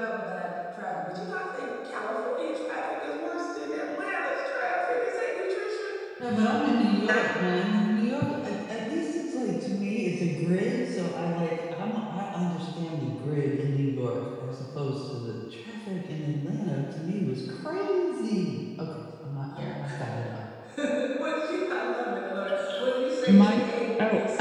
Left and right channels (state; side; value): identical; both; correlation 1.00